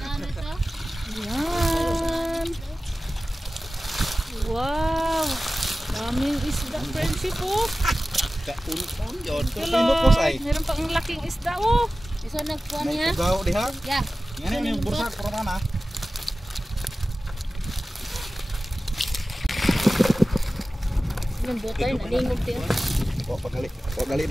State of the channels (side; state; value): both; normal; correlation 0.96